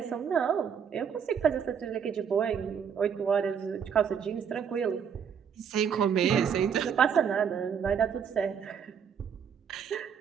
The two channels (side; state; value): left; quieter; 7.4 dB